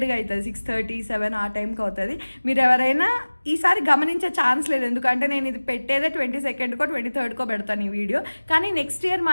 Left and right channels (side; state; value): both; inverted; correlation -1.00